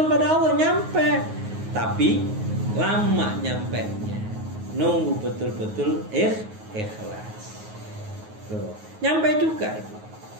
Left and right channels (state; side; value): late; left; 9.4 ms